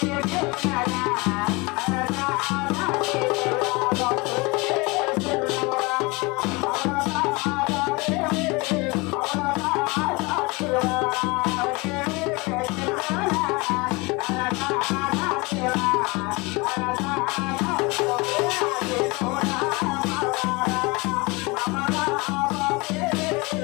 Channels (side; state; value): right; quieter; 25.7 dB